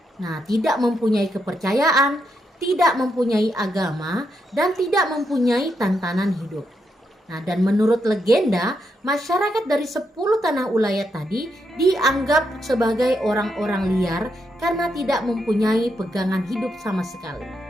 Nah, tidak mempunyai kepercayaan, tidak mempunyai agama, dan tidak mempunyai tantangan hidup. Nah, dan menurut legenda, masyarakat dari 10 tanah ulayat tadi dianggap sebagai orang-orang liar karena tidak mempunyai pegangan hidup sama sekali.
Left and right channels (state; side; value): normal; both; correlation 0.81